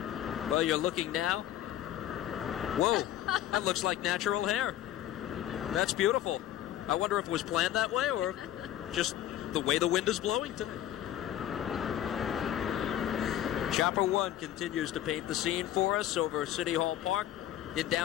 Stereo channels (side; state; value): right; quieter; 12.1 dB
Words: Well, you're looking now. Whoa, that looks like natural hair. That's beautiful. I wonder if it was planned that way or just the way the wind is blowing today. Chopper 1 continues to paint the scene for us over City Hall Park in